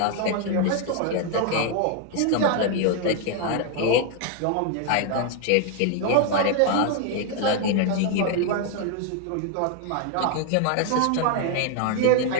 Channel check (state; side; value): different; both; correlation 0.00